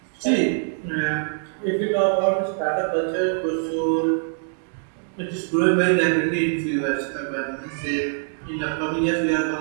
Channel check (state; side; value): silent; left; digital silence